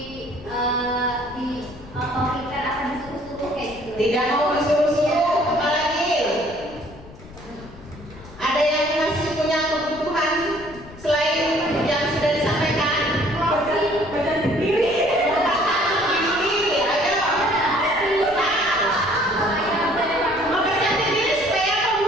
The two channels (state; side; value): noise; left; rumble, 19 dB below the sound